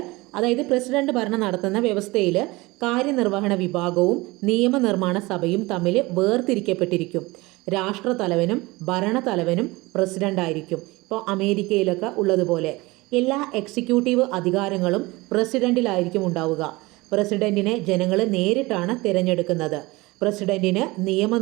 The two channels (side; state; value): left; quieter; 22.1 dB